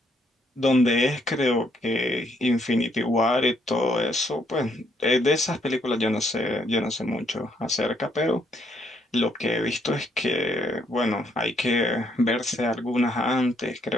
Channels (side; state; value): both; normal; correlation 0.71